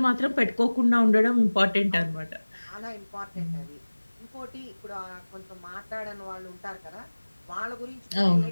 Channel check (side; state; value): both; inverted; correlation -1.00